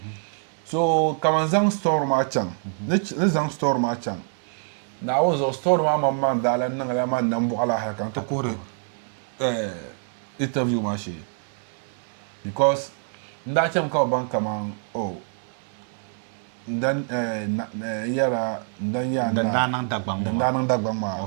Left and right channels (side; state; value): left; silent; 59 dB below the other